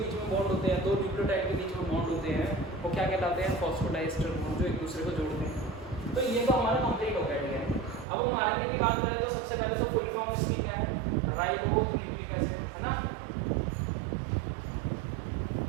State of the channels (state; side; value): drops out; left; at 8.1 s